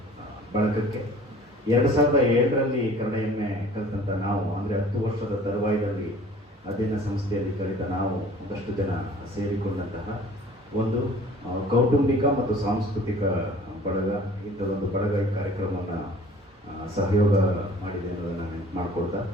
ಬಳಗಕ್ಕೆ 2007ರಲ್ಲಿ ಕನ್ನಡ ಎಮ್ಮೆ ಕಲಿತಂಥ ನಾವು, ಅಂದರೆ 10 ವರ್ಷದ ತರುವಾಯದಲ್ಲಿ ಅಧ್ಯಯನ ಸಂಸ್ಥೆಯಲ್ಲಿ ಕಲಿತ ನಾವು ಒಂದಷ್ಟು ಜನ ಸೇರಿಕೊಂಡಂತಹ ಒಂದು ಕೌಟುಂಬಿಕ ಮತ್ತು ಸಾಂಸ್ಕೃತಿಕ ಬಳಗ. ಇಂಥದ್ದೊಂದು ಬಳಗ ಈ ಕಾರ್ಯಕ್ರಮವನ್ನು ಸಹಯೋಗ ಮಾಡಿದೆ ಅನ್ನೋದನ್ನು ನೆನಪು ಮಾಡಿಕೊಳ್ತಾ,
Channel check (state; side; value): normal; both; correlation 0.49